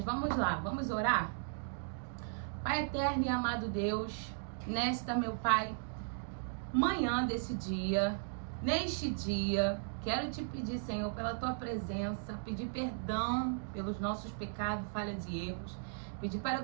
vamos lá, vamos orar? Pai eterno e amado Deus, nesta, meu Pai, manhã desse dia, neste dia, quero te pedir, Senhor, pela tua presença, pedir perdão pelos nossos pecados, falhas e erros, pedir para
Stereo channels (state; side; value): silent; left; digital silence